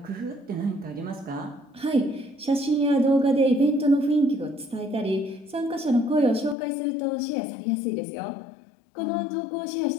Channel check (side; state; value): right; drops out; at 6.6 s